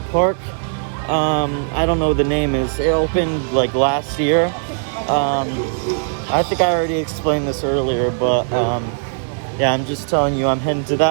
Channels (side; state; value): left; silent; 63 dB below the other